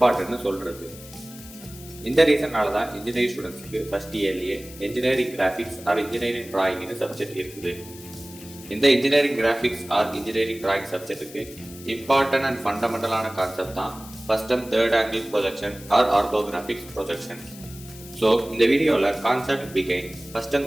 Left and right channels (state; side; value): noise; left; hiss, 17 dB below the sound